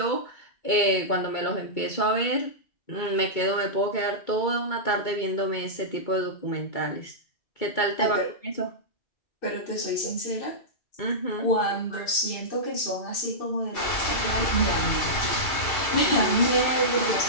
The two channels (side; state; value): right; late; 2.3 ms